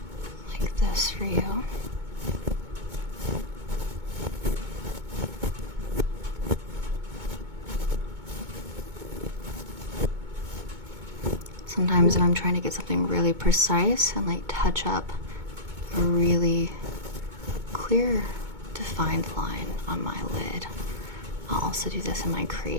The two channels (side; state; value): left; late; 2.2 ms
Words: this for you. Sometimes when I'm trying to get something really precise and like touch up a really clear, defined line on my lid, I'll also do this in my